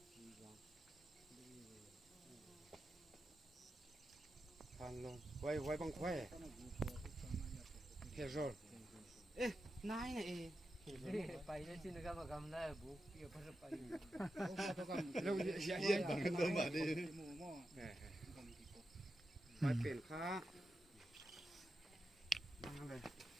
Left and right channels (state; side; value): normal; both; correlation 0.89